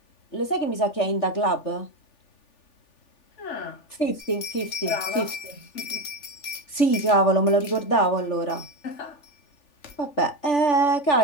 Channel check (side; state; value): right; late; 3.4 ms